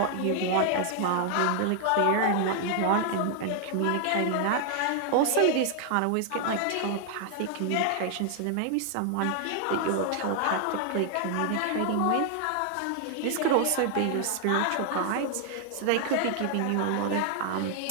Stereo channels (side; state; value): both; different; correlation 0.00